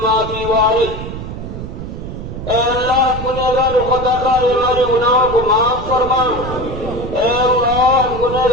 مَا فِي وَعْرِهِ۔ اے اللہ گنہگار و خطاکار ہمارے گناہوں کو معاف فرما، اے اللہ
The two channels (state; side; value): noise; right; rumble, 8 dB below the sound